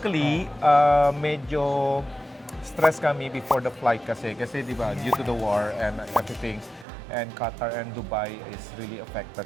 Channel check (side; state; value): left; drops out; at 6.9 s